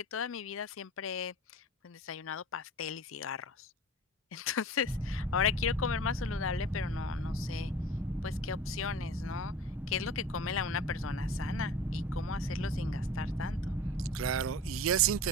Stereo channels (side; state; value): both; normal; correlation 0.38